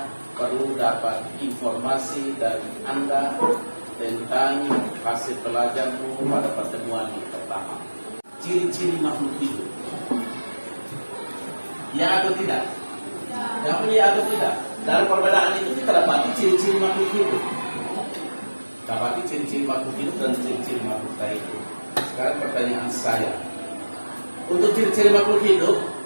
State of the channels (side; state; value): both; inverted; correlation -1.00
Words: perlu dapat informasi dari Anda tentang hasil pelajarmu pada pertemuan yang pertama. Ciri-ciri makhluk hidup. Ya atau tidak? Yang ya atau tidak? Dalam perbedaan itu kita dapati ciri-ciri makhluk hidup. Dapati ciri-ciri makhluk hidup dan ciri-ciri makhluk tak hidup. Sekarang pertanyaan saya. Untuk ciri-ciri makhluk hidup